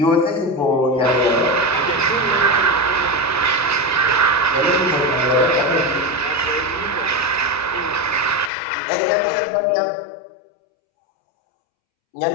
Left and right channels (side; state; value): right; drops out; at 8.5 s